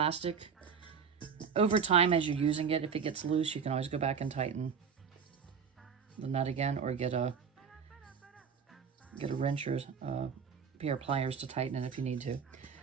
Over time, as you're using it, if it gets loose, you can always go back and tighten the nut again, or get a wrench or a pair of pliers to tighten it if you need to.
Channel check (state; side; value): quieter; left; 6.4 dB